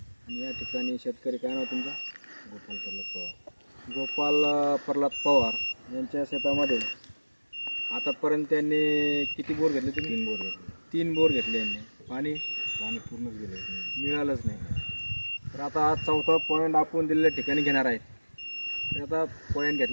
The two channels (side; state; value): both; inverted; correlation -1.00